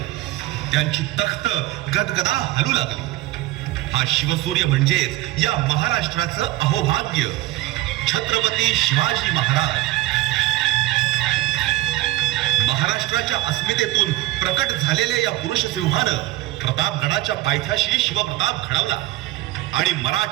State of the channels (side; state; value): left; quieter; 17.1 dB